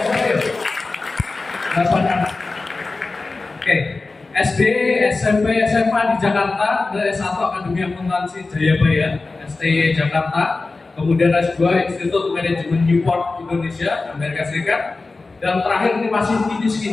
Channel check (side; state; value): right; quieter; 3.6 dB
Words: Bapak. 8 anak. Oke. SD, SMP, SMA di Jakarta, S1 Akademi Akuntansi Jayabaya, STY Jakarta, kemudian S2 Institut Manajemen Newport Indonesia, Amerika Serikat, dan terakhir ini masih